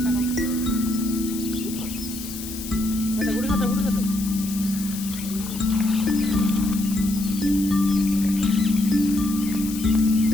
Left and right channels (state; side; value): noise; left; hiss, 11 dB below the sound